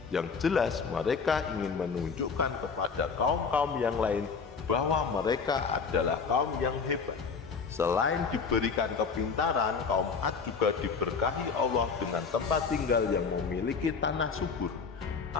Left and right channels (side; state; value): right; quieter; 5.4 dB